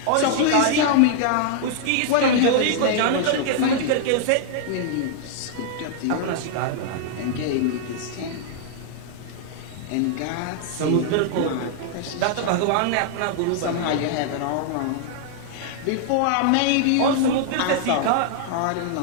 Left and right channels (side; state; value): both; different; correlation -0.01